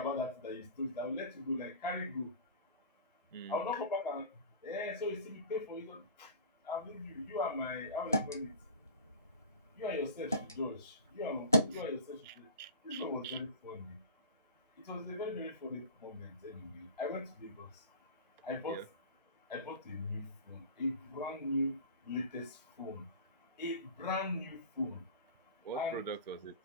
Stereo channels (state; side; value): inverted; both; correlation -0.36